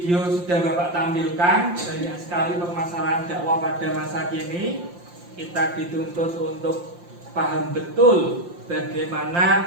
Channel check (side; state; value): left; late; 5.7 ms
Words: sudah Bapak tampilkan, banyak sekali permasalahan dakwah pada masa kini. Kita dituntut untuk paham betul bagaimana